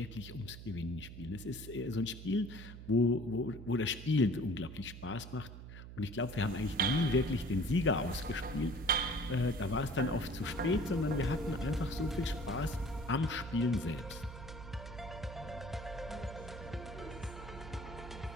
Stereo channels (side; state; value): right; noise; hum, 12 dB below the sound